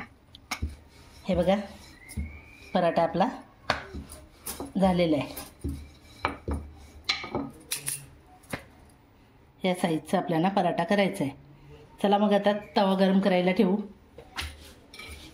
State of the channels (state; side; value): identical; both; correlation 1.00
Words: हे बघा, पराठा आपला झालेला आहे. या साईजचा आपल्याला पराठा करायचा आहे. चला मग आता तवा गरम करायला ठेवू.